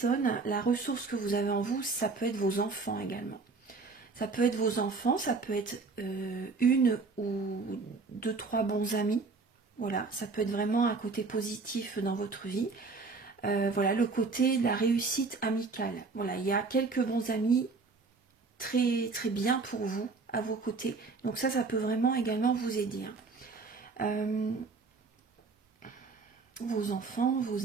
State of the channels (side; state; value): left; quieter; 4.2 dB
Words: la ressource que vous avez en vous, ça peut être vos enfants également. Ça peut être vos enfants, ça peut être une ou deux, trois bons amis. Voilà, ça peut être vraiment un côté positif dans votre vie. Voilà, le côté de la réussite amicale. Voilà, il y a quelques bons amis très, très bien pour vous, à vos côtés. Donc ça peut vraiment également vous aider. Hein. Vos enfants,